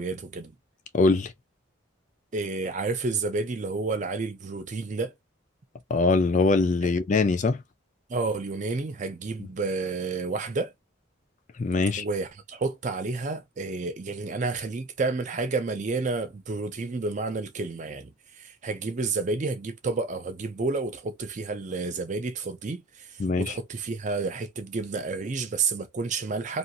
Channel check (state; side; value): normal; both; correlation 0.41